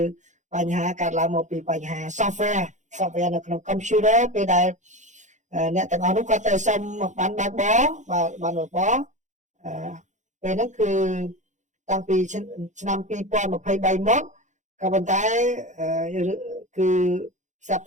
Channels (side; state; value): left; late; 0.35 ms